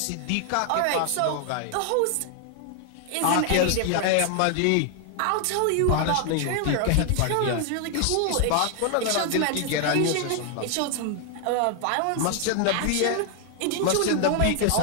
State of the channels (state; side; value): different; both; correlation 0.00